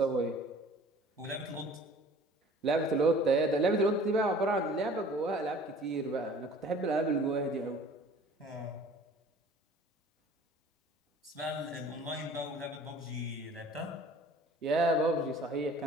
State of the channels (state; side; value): normal; both; correlation 0.49